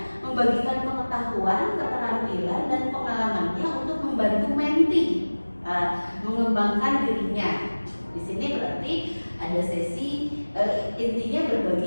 membagikan pengetahuan, keterampilan dan pengalamannya untuk membantu mentee mengembangkan dirinya. Di sini berarti ada sesi intinya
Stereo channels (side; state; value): both; inverted; correlation -1.00